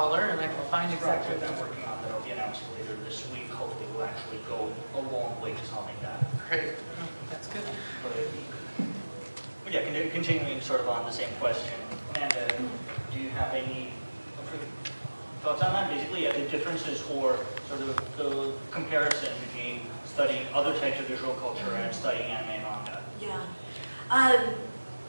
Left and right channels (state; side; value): inverted; both; correlation -1.00